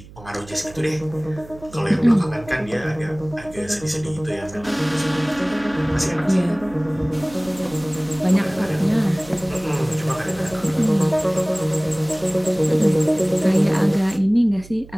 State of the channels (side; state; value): right; noise; hum, 19 dB below the sound